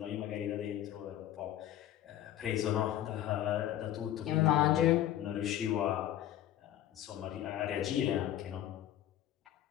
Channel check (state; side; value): quieter; right; 12.3 dB